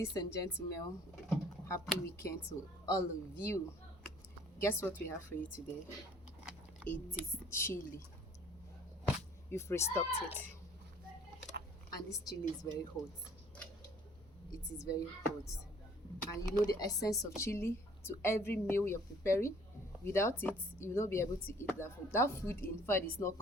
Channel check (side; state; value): both; normal; correlation 0.55